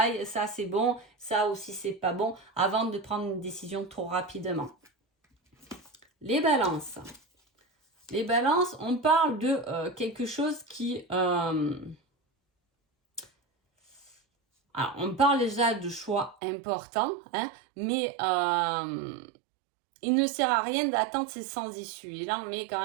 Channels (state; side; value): drops out; left; at 16.4 s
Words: ça c'est bon, ça aussi c'est pas bon, avant de prendre une décision trop rapidement. Les balances. Les balances, on parle de quelque chose qui... alors, on parle déjà de choix importants, hein, mais il ne sert à rien d'attendre ces sans issue. Et là, on met quand